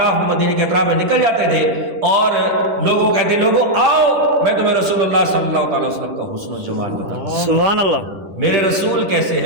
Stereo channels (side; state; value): left; late; 10 ms